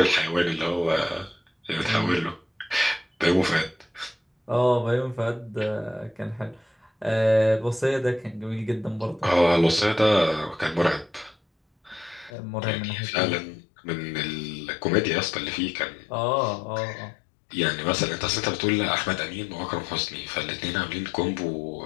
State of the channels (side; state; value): right; drops out; at 12.3 s